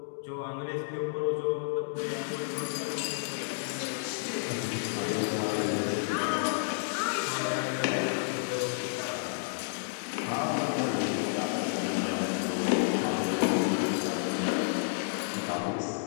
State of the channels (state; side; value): silent; right; digital silence